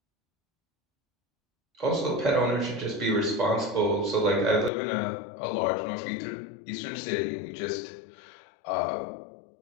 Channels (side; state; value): right; drops out; at 4.7 s